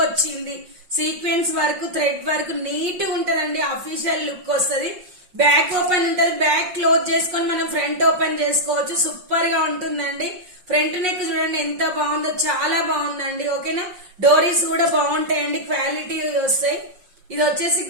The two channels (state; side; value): late; left; 5.5 ms